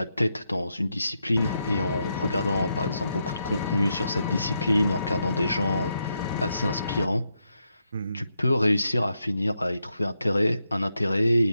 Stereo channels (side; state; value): both; inverted; correlation -0.83